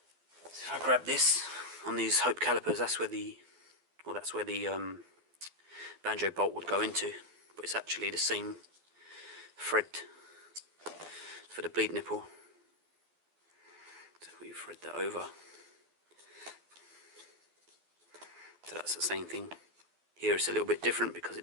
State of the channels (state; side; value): late; left; 12 ms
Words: So if I grab this, on these Hope calipers, that's where the banjo bolt would go into, but it's actually the same thread for the bleed nipple. So we thread that over. So that's the same thing. Here it's a little bit different because it